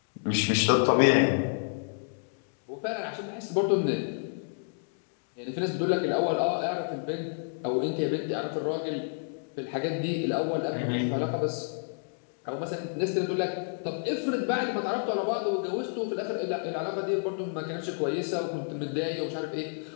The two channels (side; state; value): right; silent; digital silence